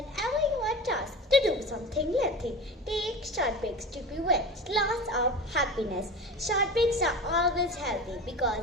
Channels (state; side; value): normal; both; correlation 0.31